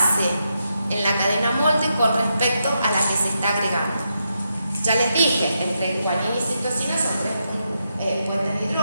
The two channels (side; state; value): both; inverted; correlation -0.84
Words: en la cadena molde con respecto a la que se está agregando. Ya les dije, entre guanina y citosina son 3 puentes de